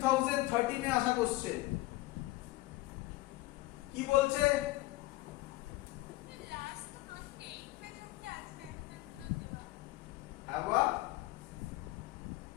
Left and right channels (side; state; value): right; quieter; 18.7 dB